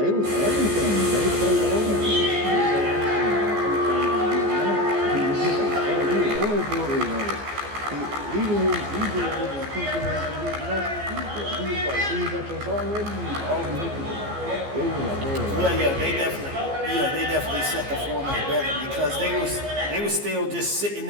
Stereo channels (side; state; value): left; late; 15 ms